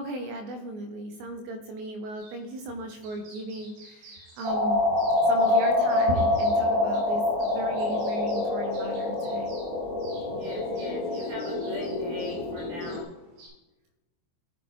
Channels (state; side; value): late; left; 24 ms